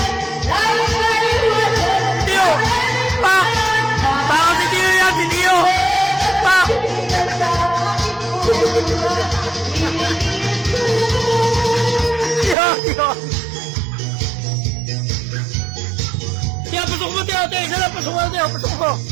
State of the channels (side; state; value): left; drops out; at 12.6 s